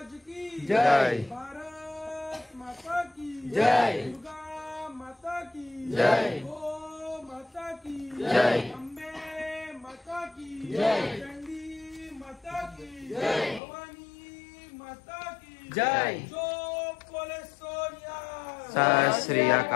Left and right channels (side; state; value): right; drops out; at 13.6 s